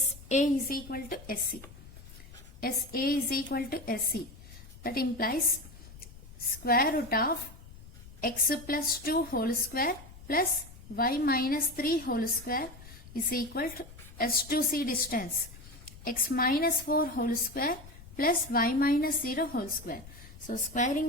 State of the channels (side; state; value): left; noise; rumble, 18 dB below the sound